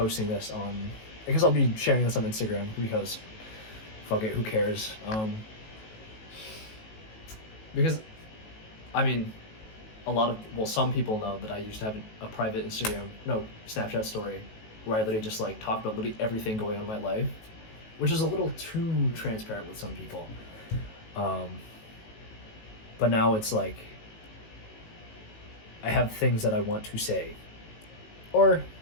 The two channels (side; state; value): right; late; 18 ms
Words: this on, I guess I'll be sharing this on Instagram, because fuck it, who cares? Because I mean, some people know that I used to have a private Snapchat story where I literally just like talked about literally everything going on in my life, which is a little too transparent with some people. But now it's like I have things that I want to say, or,